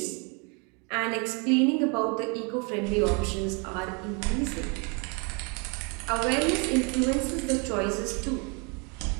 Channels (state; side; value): quieter; left; 33.5 dB